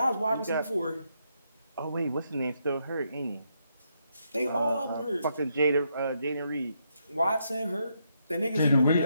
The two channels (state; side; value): inverted; both; correlation -0.78